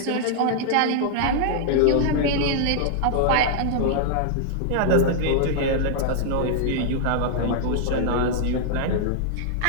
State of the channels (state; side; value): different; both; correlation -0.01